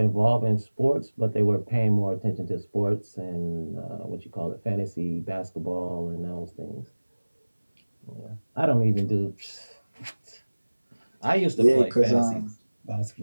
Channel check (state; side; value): inverted; both; correlation -1.00